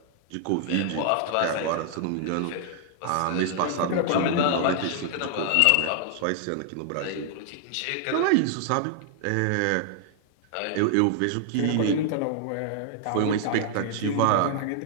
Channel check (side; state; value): both; different; correlation 0.00